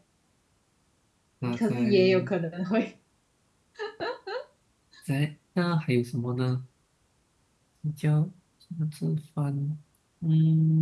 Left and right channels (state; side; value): identical; both; correlation 1.00